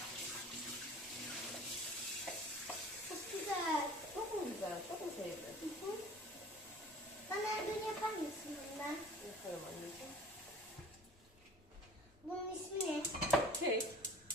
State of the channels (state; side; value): normal; both; correlation 0.45